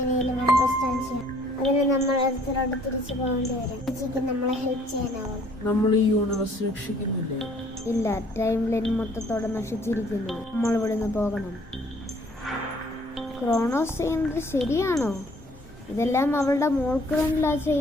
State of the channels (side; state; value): both; normal; correlation 0.59